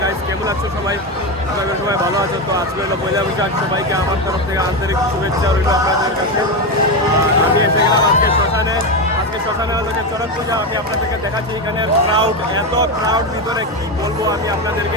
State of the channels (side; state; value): both; normal; correlation 0.13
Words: গাইস, কেমন আছো সবাই? আপনারা সবাই ভালো আছো তো? আজকে হলো পয়লা বৈশাখ, সবাইকে আমার তরফ থেকে আন্তরিক শুভেচ্ছা রইল আপনাদের কাছে। আমি এসে গেলাম আজকে শ্মশানে। আজকে শ্মশানে হলো যে চড়ক পূজা। আমি আপনাদেরকে দেখাচ্ছি এখানের ক্রাউড, এত ক্রাউড ভিতরে কী বলবো আমি